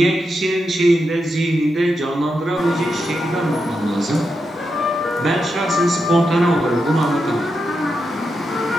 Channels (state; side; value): normal; both; correlation 0.86